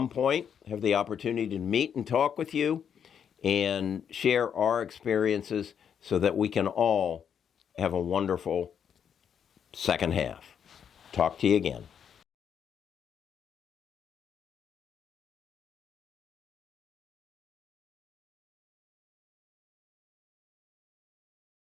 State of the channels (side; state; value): right; quieter; 8.0 dB